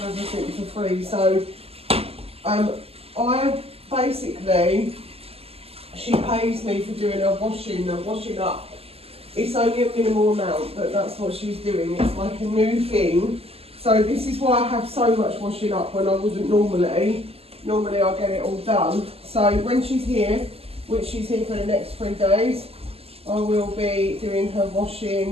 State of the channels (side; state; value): left; late; 0.29 ms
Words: everything for free. So I basically, she pays me for doing her washing up. It's only a minimal amount, but that's what she's doing. It's like a new thing. So this is why I have so much washing up when I wouldn't normally. Normally I get it all done. So when she's here, which she's here for the next 3 days, I will be doing her